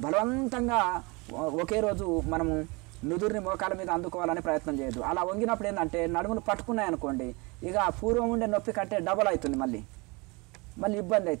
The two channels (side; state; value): left; quieter; 27.2 dB